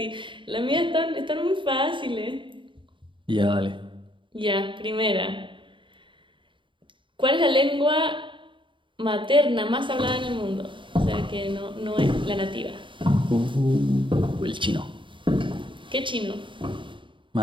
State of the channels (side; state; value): left; late; 0.24 ms